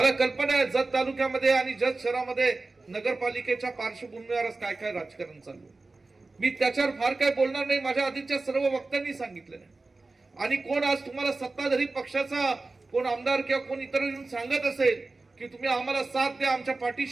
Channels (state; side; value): quieter; left; 3.5 dB